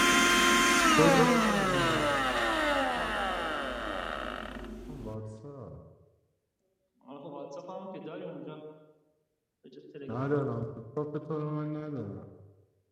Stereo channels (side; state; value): both; identical; correlation 1.00